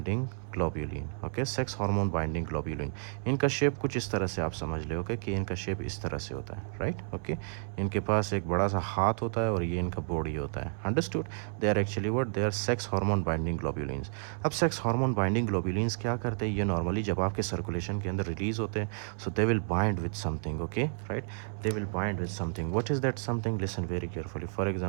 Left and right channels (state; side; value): silent; left; 57 dB below the other